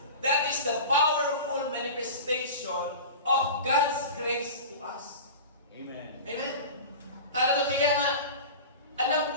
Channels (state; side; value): inverted; both; correlation -0.32